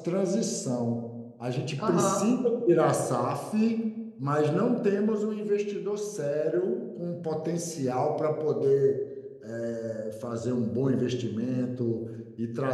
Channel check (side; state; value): both; identical; correlation 1.00